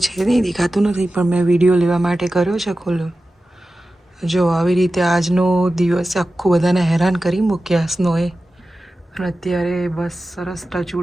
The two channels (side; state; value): both; normal; correlation 0.94